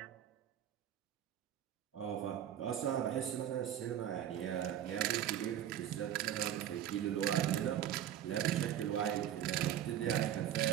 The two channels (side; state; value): left; quieter; 10.8 dB